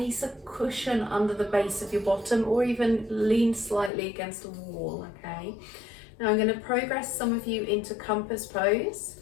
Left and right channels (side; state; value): right; drops out; at 3.9 s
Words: a cushion under the base of your bottom or even lean slightly against a wall, okay? Now I'm going to progress some of you into compass pose.